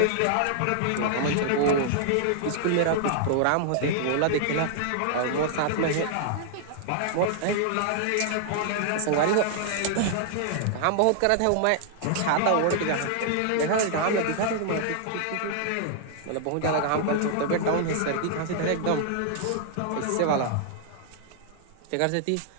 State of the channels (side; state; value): both; different; correlation -0.01